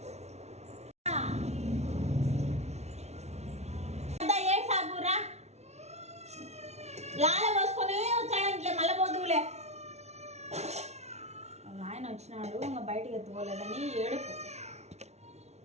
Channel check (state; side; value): late; left; 0.32 ms